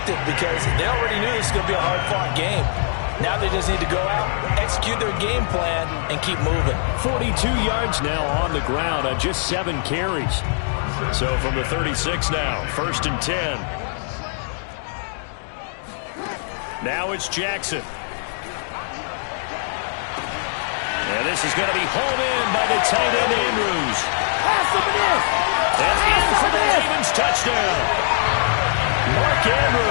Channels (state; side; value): silent; right; digital silence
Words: because they already knew this was going to be a hard-fought game. Now they just need to go out, execute their game plan, and keep moving. 42 yards now on the ground on just 7 carries. So from the 36 now, 1st and 10. Now it's Jackson. And this is going to be hauled in by the tight end Andrews. And in for the Ravens touchdown. Mark